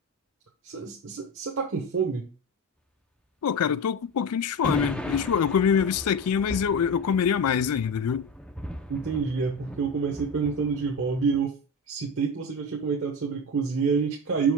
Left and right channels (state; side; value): normal; both; correlation 0.22